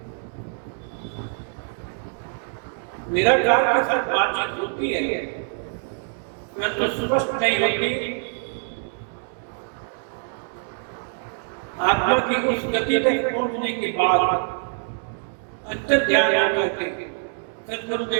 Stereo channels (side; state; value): left; silent; 60 dB below the other